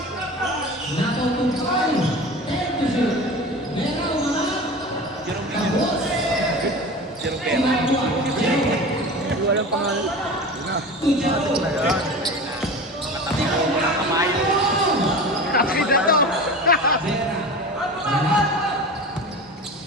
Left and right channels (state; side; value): normal; both; correlation 0.33